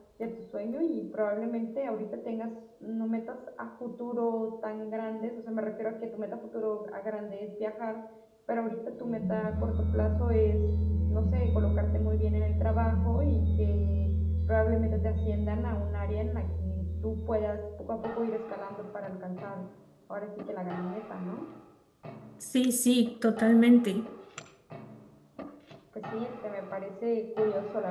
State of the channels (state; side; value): identical; both; correlation 1.00